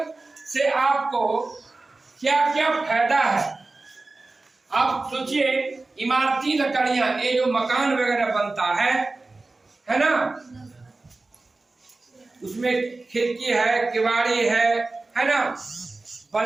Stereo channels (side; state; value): left; quieter; 3.4 dB